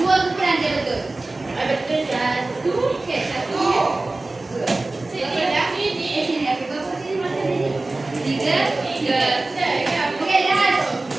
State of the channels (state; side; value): quieter; left; 3.1 dB